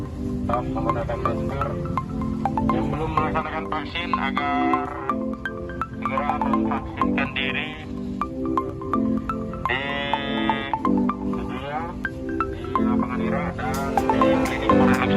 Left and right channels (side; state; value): both; identical; correlation 1.00